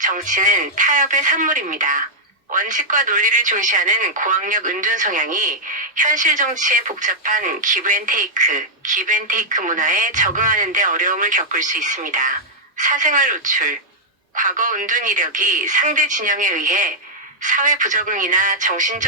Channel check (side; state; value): both; normal; correlation -0.05